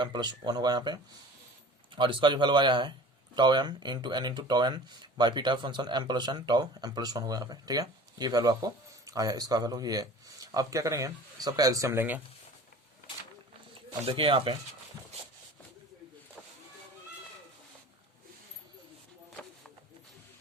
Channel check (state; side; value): normal; both; correlation 0.42